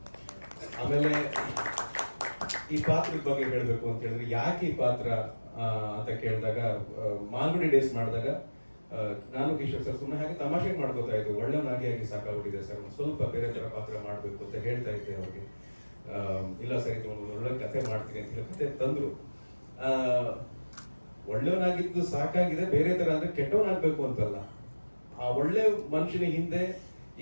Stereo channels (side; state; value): both; inverted; correlation -1.00